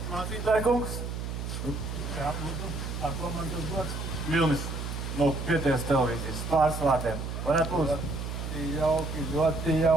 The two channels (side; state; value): right; noise; hum, 5 dB below the sound